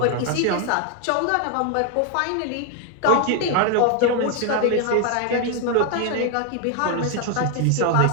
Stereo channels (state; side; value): different; both; correlation 0.00